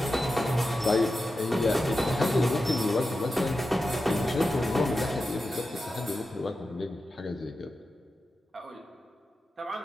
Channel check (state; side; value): normal; both; correlation 0.91